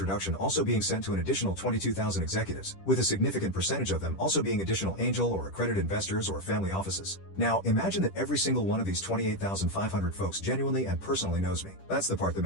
also being sent to an additional 22,000 executives, with a significant percentage of them also being additional angel or accredited investors or family offices. Now, imagine that every single one of these 28,500 folks genuinely and personally knows me. That's the part that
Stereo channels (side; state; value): right; late; 10 ms